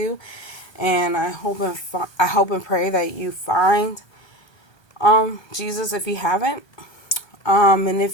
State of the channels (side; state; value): right; late; 1.3 ms